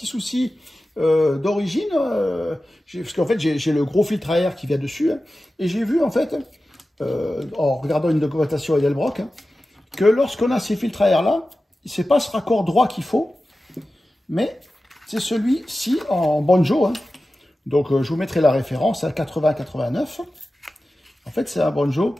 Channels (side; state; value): both; normal; correlation 0.94